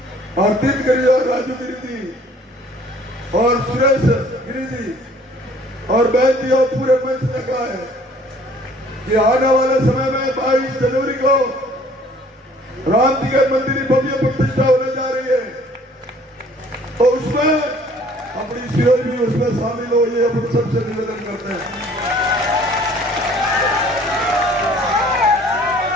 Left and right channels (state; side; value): normal; both; correlation 0.55